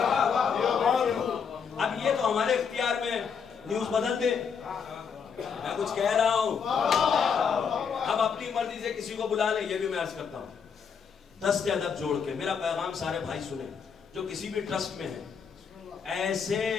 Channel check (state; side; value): quieter; right; 6.5 dB